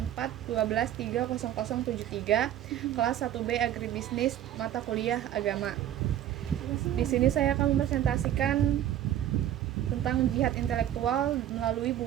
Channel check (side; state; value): left; quieter; 11.6 dB